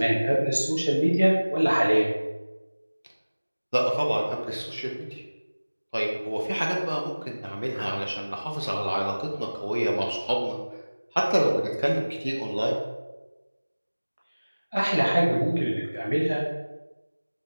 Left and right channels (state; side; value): inverted; both; correlation -1.00